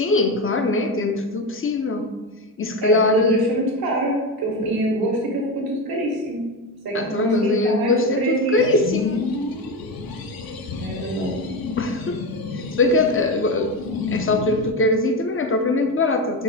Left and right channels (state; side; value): normal; both; correlation 0.16